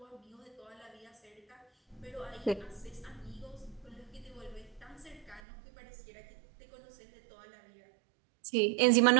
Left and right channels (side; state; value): left; drops out; at 5.4 s